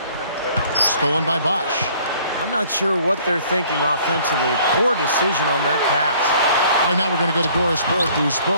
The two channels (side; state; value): both; inverted; correlation -0.57